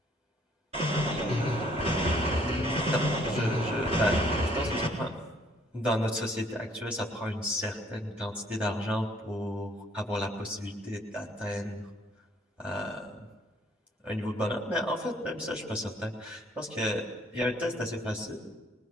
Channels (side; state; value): both; normal; correlation 0.63